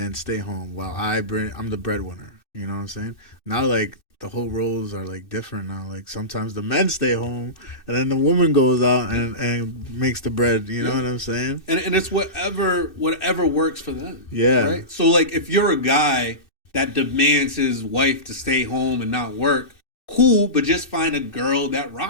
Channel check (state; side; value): late; right; 2.6 ms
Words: stay home while I'm the breadwinner. You know what I'm saying? Now, like, the whole roles are, like, different now. Like, sometimes the men stay home, and then the woman goes out and makes the bread. You know what I'm saying? And it's whatever works for them. Yeah. Right? So, like, if you're a guy that demands his wife to stay home and not work, cool, but just find a girl that